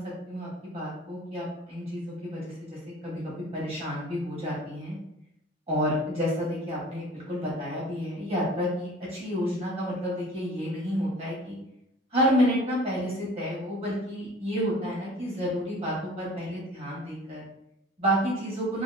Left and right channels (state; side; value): normal; both; correlation 0.46